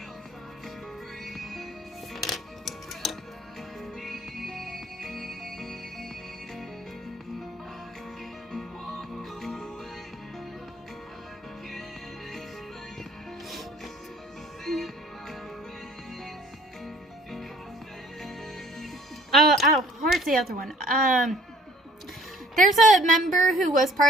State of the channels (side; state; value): both; normal; correlation 0.56